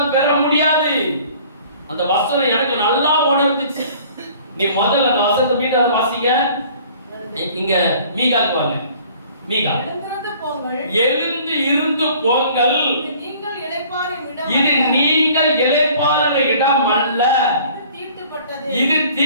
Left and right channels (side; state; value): both; inverted; correlation -0.52